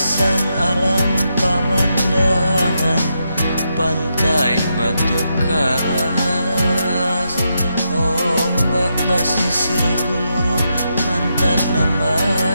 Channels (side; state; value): both; inverted; correlation -0.83